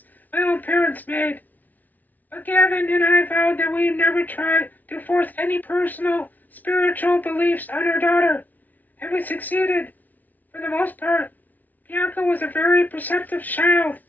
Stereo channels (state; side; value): late; right; 0.080 ms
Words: my own parents made. But Gavin and I vowed that we'd never try to force any personal, spiritual beliefs on our daughter, and we succeeded, for the most part. Bianca was a very perceptive child.